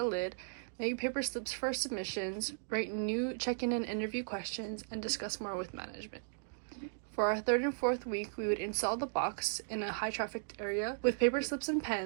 lid, make paper slips for submissions, write new check-in and interview questions, and discuss more with management. For our third and fourth week, we would install the box in a high-trafficked area with paper slips and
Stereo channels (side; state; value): left; silent; digital silence